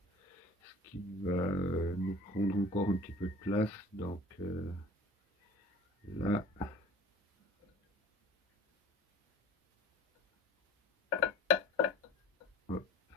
ce qui va nous prendre encore un petit peu de place. Donc là, hop.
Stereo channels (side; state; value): both; normal; correlation 0.44